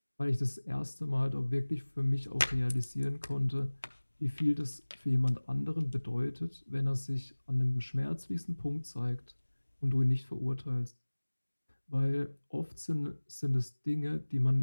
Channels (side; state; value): both; inverted; correlation -1.00